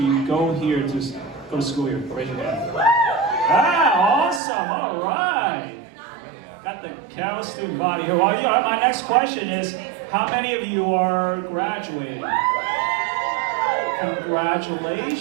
go here to go to school here? Raise your hand. Ah, awesome, all right. Got the Cal student body here. Well, my next question is, how many of you are graduating?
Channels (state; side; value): drops out; left; at 4.4 s